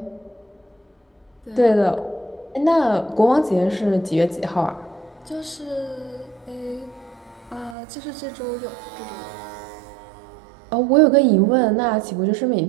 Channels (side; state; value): left; drops out; at 7.8 s